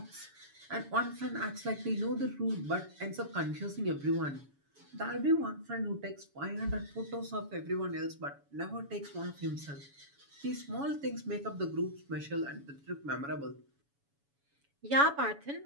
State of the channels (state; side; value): late; left; 7.1 ms